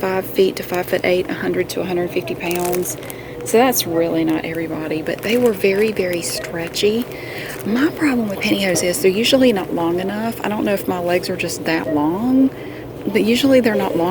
feet to 5'8", 100 to 150 pounds. So that's really not everybody, but they were very, very stretchy. My problem with pantyhose is they're usually not long enough. I don't know if my legs are just that long, but usually they're not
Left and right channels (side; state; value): both; identical; correlation 1.00